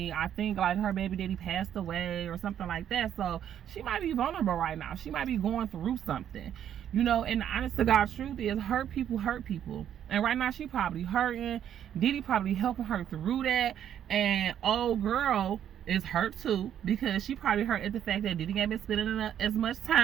I think like her baby daddy passed away or something like that. So she might be vulnerable right now. She might be going through something. You know, and the honest to God truth is, hurt people hurt people. And right now she probably hurting. Diddy probably helping her through that. And old girl is hurt too, because she probably hurt at the fact that Diddy ain't been spending as much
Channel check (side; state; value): left; quieter; 9.9 dB